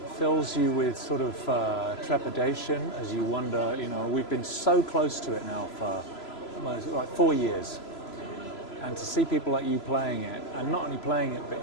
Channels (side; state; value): right; late; 3.0 ms